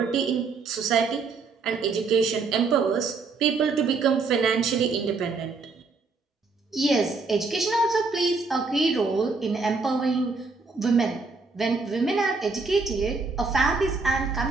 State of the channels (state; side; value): quieter; left; 4.2 dB